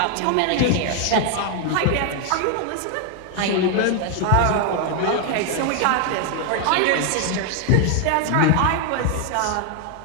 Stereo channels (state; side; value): different; both; correlation 0.00